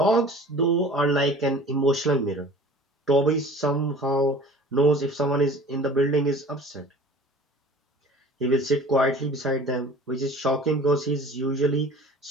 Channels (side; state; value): both; normal; correlation 0.44